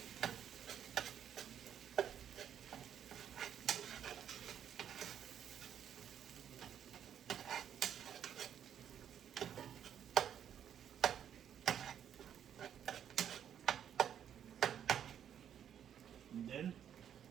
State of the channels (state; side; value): quieter; left; 9.3 dB